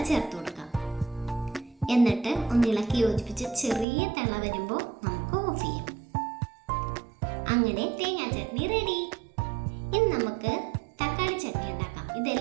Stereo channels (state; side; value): drops out; left; at 3.9 s